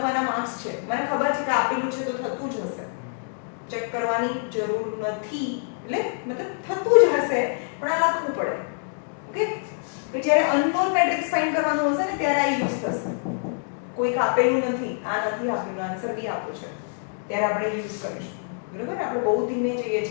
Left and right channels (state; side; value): silent; right; 61 dB below the other